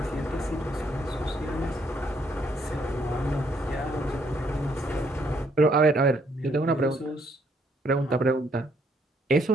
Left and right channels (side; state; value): both; normal; correlation 0.70